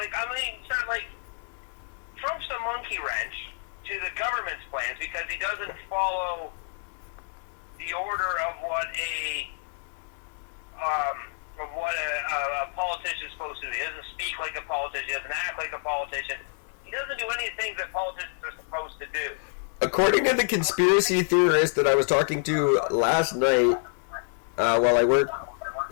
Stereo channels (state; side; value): silent; right; digital silence